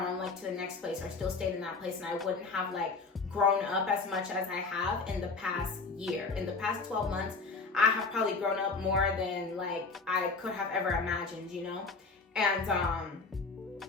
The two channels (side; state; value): right; quieter; 4.2 dB